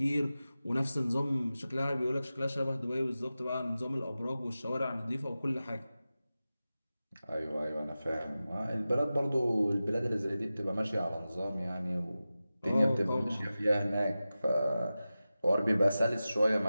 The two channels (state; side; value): inverted; both; correlation -0.95